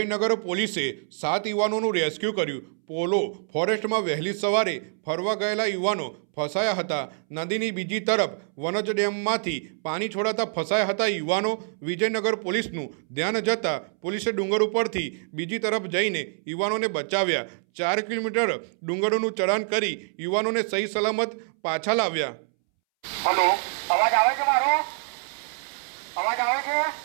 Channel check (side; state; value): left; silent; 61 dB below the other